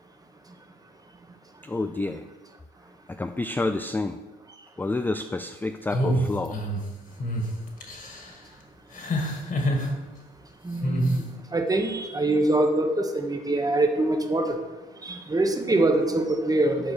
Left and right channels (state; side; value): normal; both; correlation 0.75